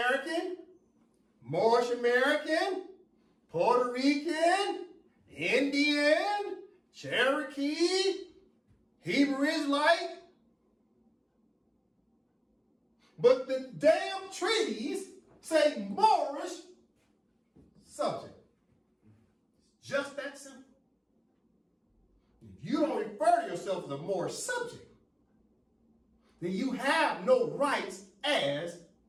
Moorish American, Puerto Rican, Indian, Cherokee, Hebrew Israelite. But the damn treaties say Moorish subject. Just that simple. If you don't refer to yourself as a Moorish subject, then you have no rights as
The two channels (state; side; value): identical; both; correlation 1.00